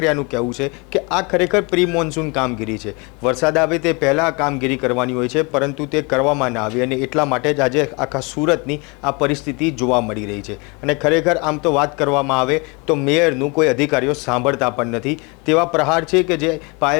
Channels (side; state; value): right; quieter; 29.1 dB